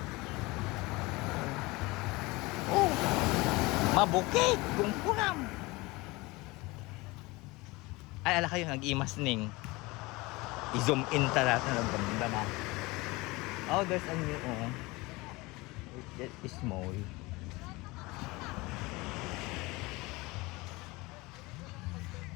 Oh. Mabukit. Kungkunam. Ay, ala kayo, nag-imas, Ning. I-zoom in talaga ng ganda na. Oh, there's a new, oh. It's small.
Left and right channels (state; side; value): quieter; right; 22.9 dB